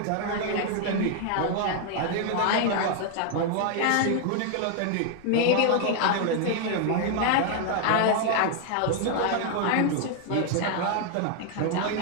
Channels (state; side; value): different; both; correlation 0.00